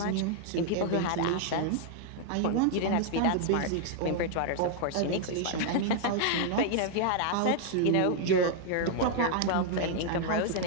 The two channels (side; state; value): both; different; correlation -0.01